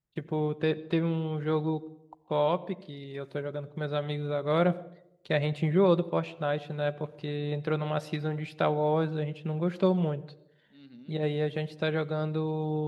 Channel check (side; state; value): both; identical; correlation 1.00